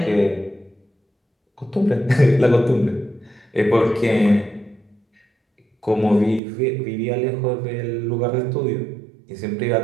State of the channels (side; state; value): left; drops out; at 6.4 s